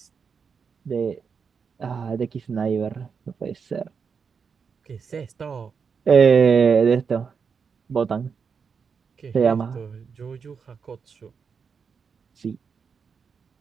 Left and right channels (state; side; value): quieter; left; 6.0 dB